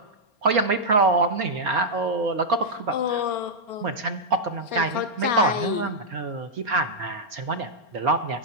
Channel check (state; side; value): late; left; 4.3 ms